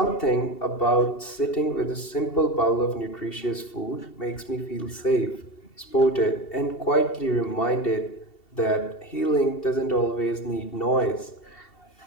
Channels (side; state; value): right; late; 2.7 ms